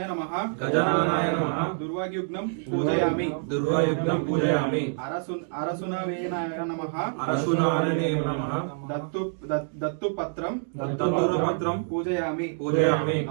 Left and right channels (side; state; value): left; silent; digital silence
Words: నమః గజాననాయ నమః దుర్వాయుగ్నం పూజయామి దుర్వాయుగ్నం పూజయామి అరసునవేనాయ నమః అరసునారణే నమః దత్తుపత్రం దత్తూరపత్రం పూజయామి పూజయామి.